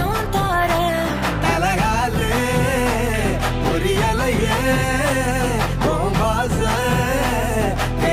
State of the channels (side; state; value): both; identical; correlation 1.00